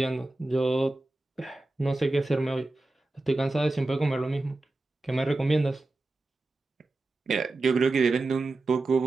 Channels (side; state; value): left; quieter; 3.0 dB